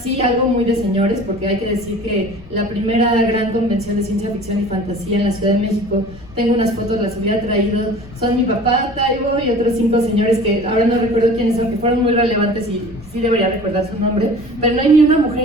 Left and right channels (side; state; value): left; noise; rumble, 20 dB below the sound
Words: algo muy de señores, porque hay que decir que la primera gran convención de ciencia ficción y fantasía en la Ciudad de México, tengo unas fotos, las hubiera traído, son mi papá, Taibo y otros 5 señores que ahora no recuerdo quiénes son, que fueron muy relevantes y sí debería recordar su nombre, pero no hay ni una